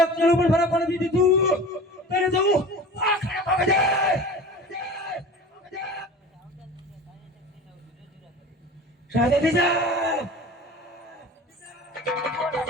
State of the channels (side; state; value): both; normal; correlation 0.38